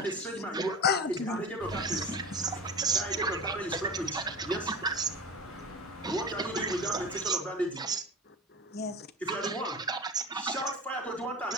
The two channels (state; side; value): normal; both; correlation 0.30